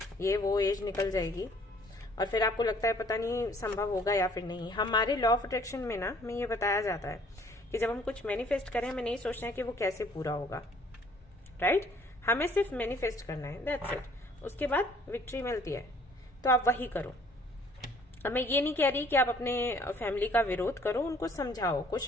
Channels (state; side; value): normal; both; correlation 0.58